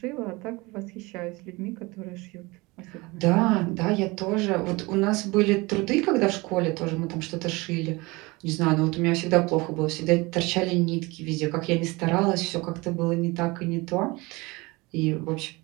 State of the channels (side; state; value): left; quieter; 23.8 dB